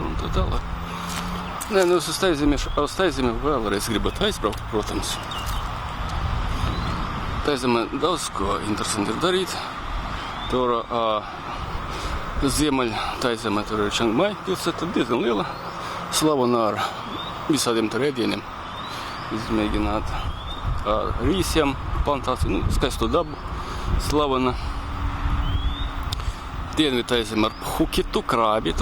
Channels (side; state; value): both; identical; correlation 1.00